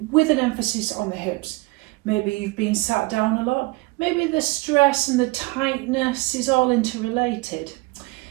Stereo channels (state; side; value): quieter; left; 23.9 dB